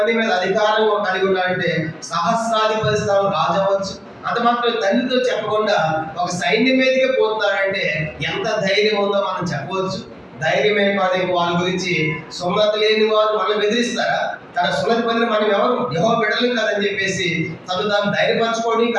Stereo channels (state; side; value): identical; both; correlation 1.00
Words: మీద అధికారం కలిగి ఉన్నాడంటే సహస్రాధిపతి స్థానం రాజు అవ్వచ్చు. అంత మాత్రం తండ్రితో చెప్పకుండా ఒక సైన్యం మీదకే పోతున్నాడంటే ఎంత ధైర్యం ఉందో మనం చెప్పవచ్చు. ధైర్యమే కాదు, వాళ్ళ గురించి సున్నతి లేని వారు మనల్ని బెదిరిస్తారా? తన సున్నతి పొందిన మనం ఎవరు? యెహోవా బిడ్డలు కాదని చెప్పేసి తాను ధైర్యపరచుకోండి.